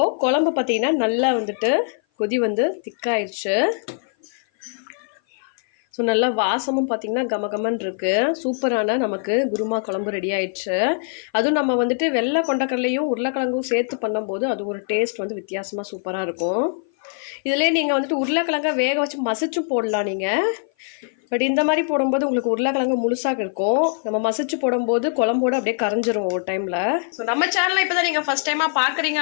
குழம்பு பார்த்தீங்கன்னா நல்லா வந்துட்டு கொதி வந்து திக்காயிடுச்சு. ஸோ நல்லா வாசமும் பார்த்திங்கன்னா கமகமன்னு இருக்குது. சூப்பரான நமக்கு குருமா குழம்பு ரெடி ஆயிடுச்சு. அதுவும் நம்ம வந்துட்டு வெள்ளை கொண்டக்கடலையும் உருளைக்கிழங்கும் சேர்த்து பண்ணும்போது அது ஒரு டேஸ்ட் வந்து வித்தியாசமாக சூப்பராக இருக்கும். இதிலே நீங்கள் வந்துட்டு உருளைக்கிழங்க வேக வச்சு மசிச்சும் போடலாம். நீங்கள் பட் இந்த மாதிரி போடும்போது உங்களுக்கு உருளைக்கிழங்கு முழுசாக இருக்கும். நம்ம மசிச்சு போடும்போது குழம்போடு அப்படியே கரைஞ்சிரும் ஒரு டைமில். ஸோ நம்ம சேனலை இப்போ தான் நீங்கள் ஃபஸ்ட் டைமாக பார்க்குறீங்க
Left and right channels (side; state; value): right; silent; 57 dB below the other